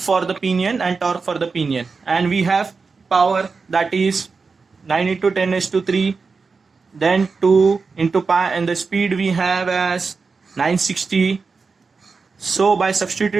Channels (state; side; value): quieter; left; 4.6 dB